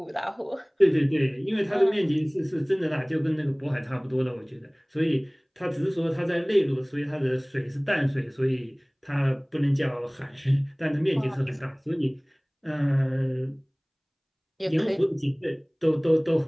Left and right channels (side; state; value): both; identical; correlation 1.00